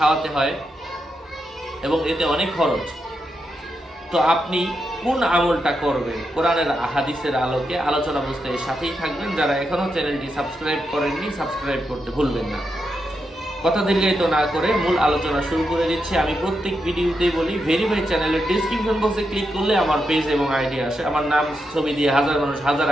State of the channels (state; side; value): normal; both; correlation 0.84